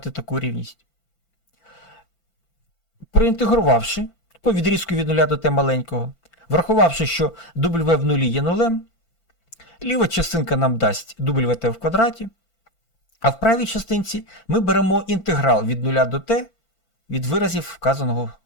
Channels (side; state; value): right; late; 5.9 ms